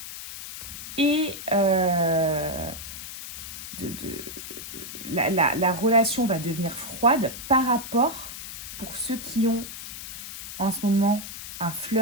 et la relation va devenir froide par rapport, pour ceux qui ont en ce moment un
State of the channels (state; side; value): noise; left; hiss, 10 dB below the sound